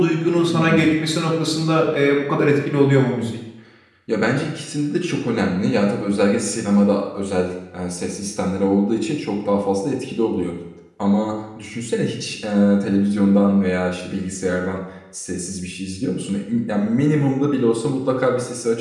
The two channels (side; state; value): both; identical; correlation 1.00